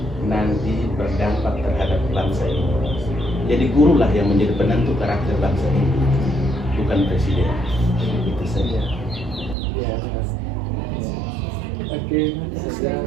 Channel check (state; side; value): drops out; left; at 9.6 s